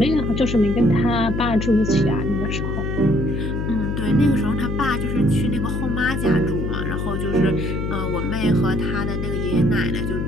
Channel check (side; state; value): left; noise; hum, 2 dB below the sound